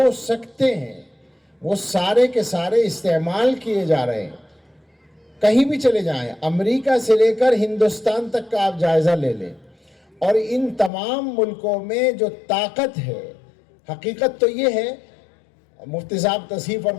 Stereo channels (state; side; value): drops out; right; at 10.9 s